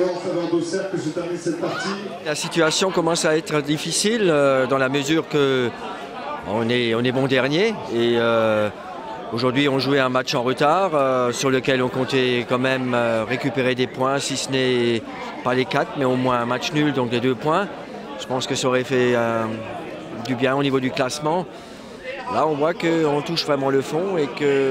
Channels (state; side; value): identical; both; correlation 1.00